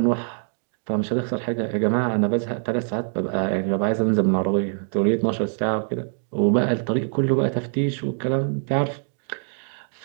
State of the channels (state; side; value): silent; left; 63 dB below the other